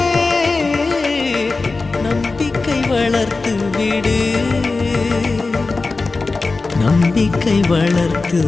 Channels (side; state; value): right; quieter; 3.7 dB